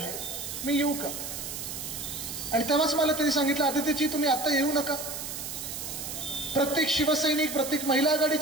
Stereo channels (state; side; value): noise; right; hiss, 7 dB below the sound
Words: मी येऊ का? आणि तेव्हाच मला त्यांनी सांगितलं, आदित्यजी तुम्ही आता येऊ नका. प्रत्येक शिवसैनिक, प्रत्येक महिला